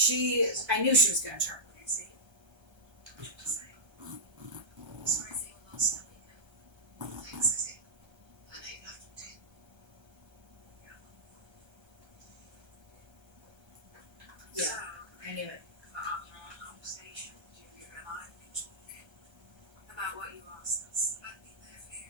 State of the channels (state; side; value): late; left; 1.3 ms